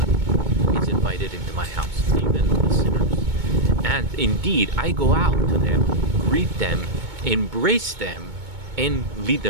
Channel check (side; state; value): left; late; 2.2 ms